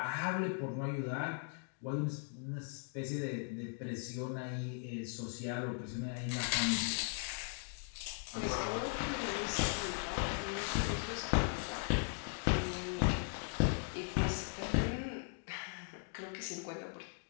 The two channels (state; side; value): silent; right; 52 dB below the other